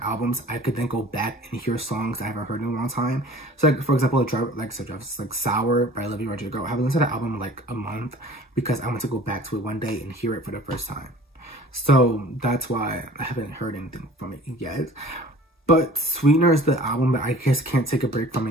albums, I could then go back and hear songs I haven't heard in a long time. So like, for example, like Sour by Olivia Rodrigo. I haven't listened to that album in like a month because I want to go back to it one day and hear it for the first time. So that's why I haven't heard anything from it yet. But Sweetener is the album that I just can't take a break from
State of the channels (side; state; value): both; normal; correlation 0.47